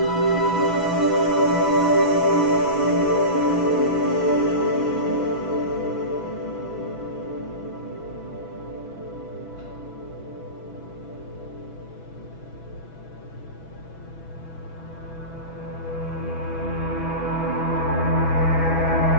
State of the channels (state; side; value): late; right; 6.1 ms